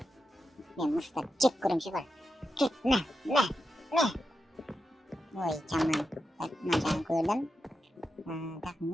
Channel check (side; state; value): both; normal; correlation 0.88